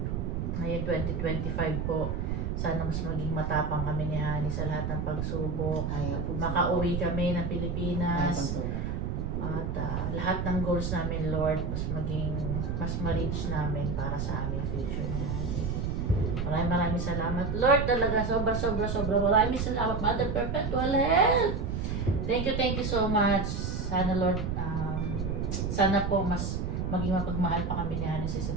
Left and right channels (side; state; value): right; noise; rumble, 1 dB below the sound